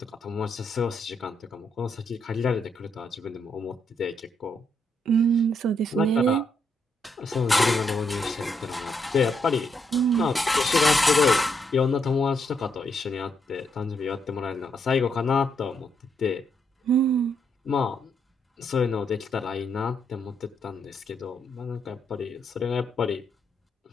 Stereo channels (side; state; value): both; normal; correlation 0.77